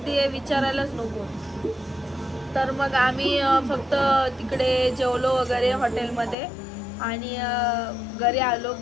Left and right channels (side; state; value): right; drops out; at 6.4 s